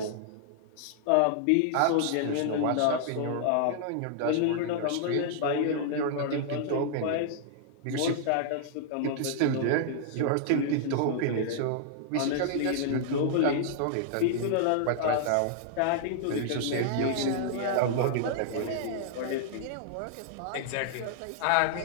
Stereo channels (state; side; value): different; both; correlation -0.01